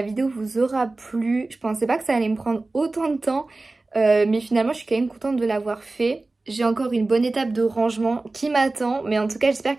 vidéo vous aura plu. Je pensais pas que ça allait me prendre autant de temps, mais finalement je suis quand même contente de l'avoir fait. J'ai encore une bonne étape de rangement qui m'attend, mais en tout cas j'espère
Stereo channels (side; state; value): left; quieter; 3.2 dB